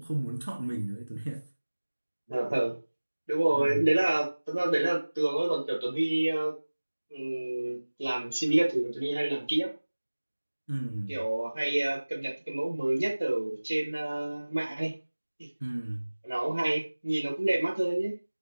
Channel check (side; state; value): both; inverted; correlation -1.00